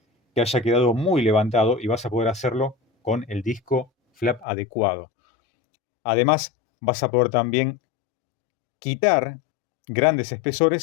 que haya quedado muy levantado y vas a poder hacerlo con el disco flap adecuado. Además, vas a poder también quitar grandes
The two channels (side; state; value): right; drops out; at 4.5 s